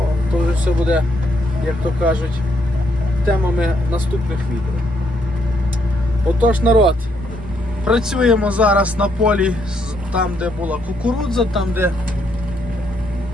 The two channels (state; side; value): normal; both; correlation 0.74